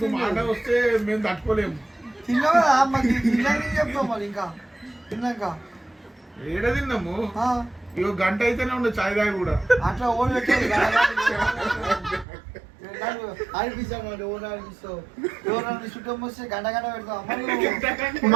మాట వస్తే మేము తట్టుకోలేము. తిన్నావు కదా మాకు తిన్నాక చెప్తాం మరి ఇంకా తిన్నాక ఏడ తిన్నాము. ఇగో గంట అయితేనే ఉండే చాయ్ దాకా కూడా అట్లా ఓన్ పెట్టేది అనిపిస్తాం. ఓన్ అనిపిస్తావు ఎవరు చుట్టం వస్తే గంట గంట పెడతాం.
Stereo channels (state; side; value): drops out; left; at 12.2 s